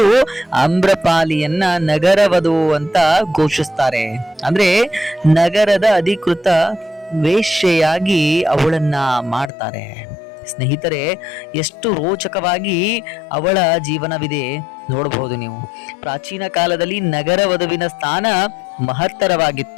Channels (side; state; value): right; drops out; at 9.5 s